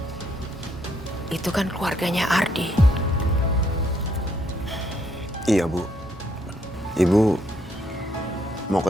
itu kan keluarganya Ardi. Iya, Bu. Ibu mau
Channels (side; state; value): both; normal; correlation 0.72